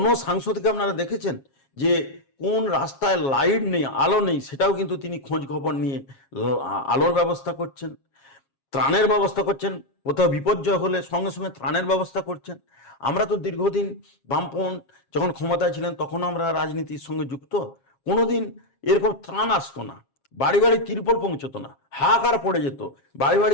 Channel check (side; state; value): right; late; 7.4 ms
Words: সাংসদকে আপনারা দেখেছেন যে কোন রাস্তায় লাইট নেই, আলো নেই, সেটাও কিন্তু তিনি খোঁজ খবর নিয়ে আলোর ব্যবস্থা করছেন, ত্রাণের ব্যবস্থা করছেন, কোথাও বিপর্যয় হলে সঙ্গে সঙ্গে ত্রাণের ব্যবস্থা করছেন? আমরা তো দীর্ঘদিন বামপন্থ যখন ক্ষমতায় ছিলেন তখন আমরা রাজনীতির সঙ্গে যুক্ত, কোনোদিন এরকম ত্রাণ আসতো না, বাড়ি বাড়ি তিরপল পৌঁছতো না, হাহাকার পড়ে যেত, বাড়ি